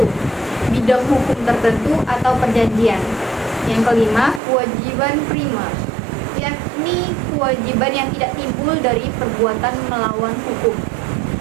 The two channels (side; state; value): left; drops out; at 4.4 s